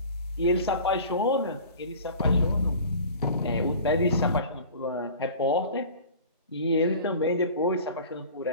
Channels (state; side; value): inverted; both; correlation -0.41